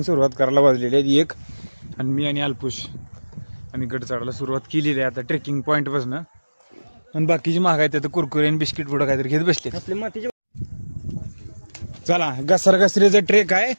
सुरुवात करायला वाजलेली आहे 1. आणि मी आणि अल्पुश आम्ही गड चढायला सुरुवात केलेली आहे आता ट्रेकिंग पॉइंट पासून. आणि बाकीची महाग आहेत आता कुरकुरे आणि बिस्किट पुढं काहीतरी घेत बसले. चला घसरघसरीचा ट्रेक आहे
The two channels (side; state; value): both; inverted; correlation -1.00